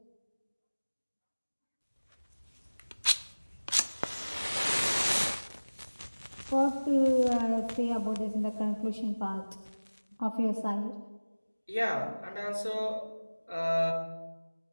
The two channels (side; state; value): both; inverted; correlation -1.00